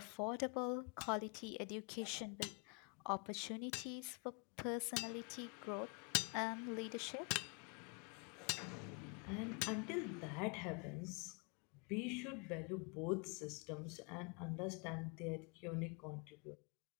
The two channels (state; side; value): quieter; right; 33.1 dB